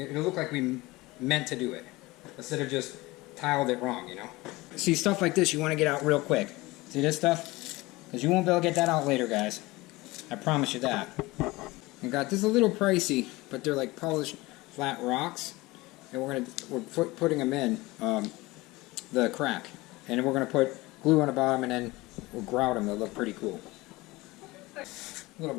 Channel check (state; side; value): quieter; right; 21.1 dB